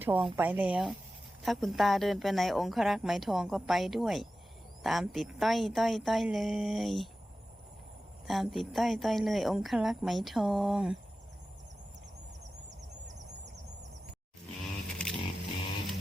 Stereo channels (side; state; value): both; normal; correlation 0.94